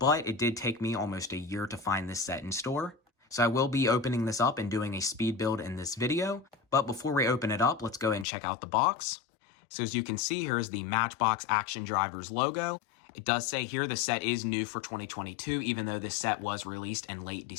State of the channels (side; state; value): right; drops out; at 8.2 s